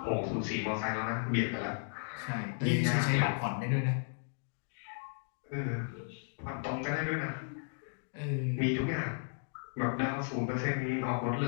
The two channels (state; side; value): silent; right; digital silence